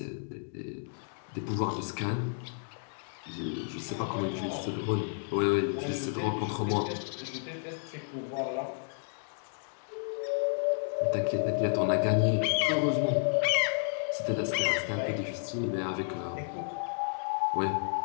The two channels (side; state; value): right; silent; digital silence